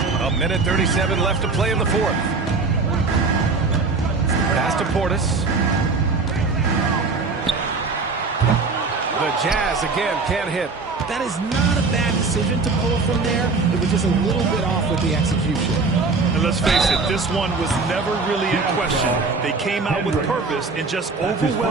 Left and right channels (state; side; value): quieter; left; 4.1 dB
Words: A minute 37 left to play in the fourth. Pass to Portis. The Jazz again can't hit. That is not a bad decision to pull from there. It was just a little bit off with the execution. And let's face it, this one was never really in question. They came out with purpose and just